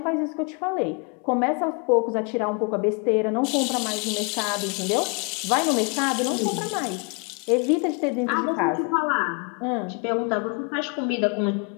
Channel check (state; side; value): quieter; right; 34.9 dB